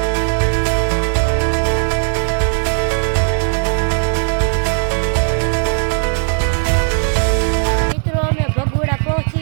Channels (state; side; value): silent; left; 66 dB below the other